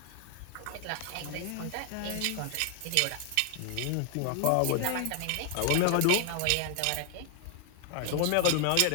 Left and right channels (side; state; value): both; different; correlation 0.00